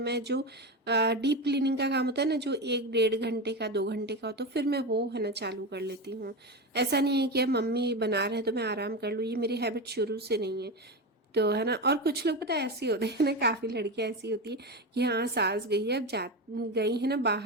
जो डीप क्लीनिंग का काम होता है ना, जो 1-1.5 घंटे का 2 घंटे का हो, तो फिर मैं वो है ना चालू कर लेती हूँ। ऐसा नहीं है कि अब मम्मी बना रहे हैं तो मैं आराम कर लूँ, ये मेरी हैबिट शुरू से नहीं है। तो है ना। और कुछ लोग पता है ऐसे होते हैं ना, काफ़ी लड़कियां ऐसी होती है कि हाँ सास गई है, अब जा गई है ना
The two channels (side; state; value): both; normal; correlation 0.19